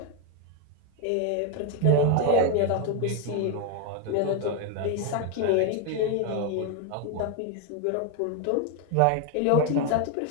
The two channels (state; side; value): different; both; correlation 0.01